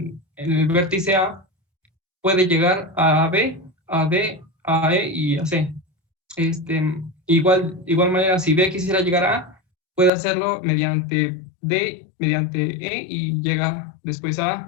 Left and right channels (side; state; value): right; drops out; at 10.1 s